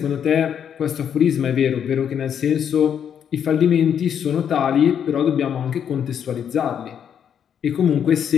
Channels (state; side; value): quieter; right; 8.4 dB